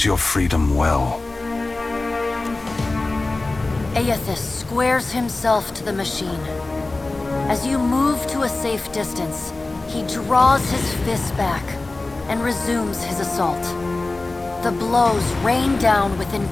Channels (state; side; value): quieter; right; 3.2 dB